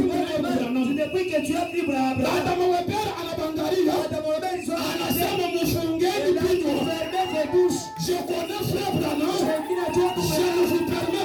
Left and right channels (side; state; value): both; identical; correlation 1.00